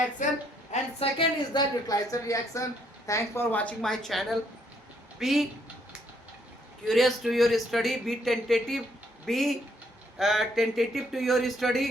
and second is the neutralization reaction. Thanks for watching my channel. Be curious to your study, be tentative to your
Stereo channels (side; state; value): both; normal; correlation 0.70